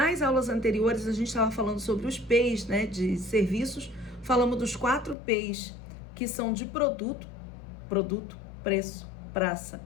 aulas anteriores, a gente estava falando sobre os P's, né, de serviços. Falamos dos 4 P's, que são de produto, preço, praça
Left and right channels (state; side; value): drops out; right; at 5.2 s